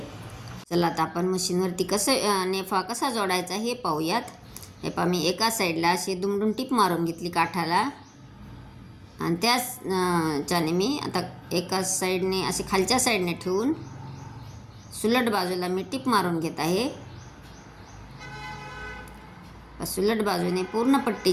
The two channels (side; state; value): both; identical; correlation 1.00